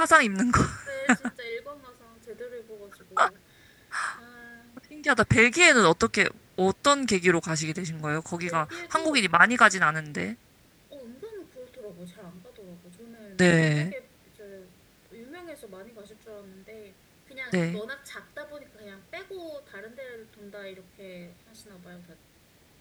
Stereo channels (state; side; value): identical; both; correlation 1.00